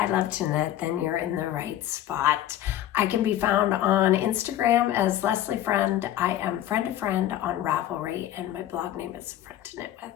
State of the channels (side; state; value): right; quieter; 12.5 dB